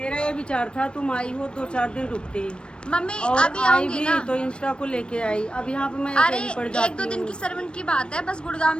ये विचार था तुम आई हो 2-4 दिन रुकती मम्मी और अभी आई आऊंगी भी ना। तो इंस्टा को लेके आई। अब यहाँ पे मैं अरे अकेली पड़ जाती 1-2 दिन की सर्वेंट की बात है, बस गुड़गांव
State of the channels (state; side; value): late; right; 0.056 ms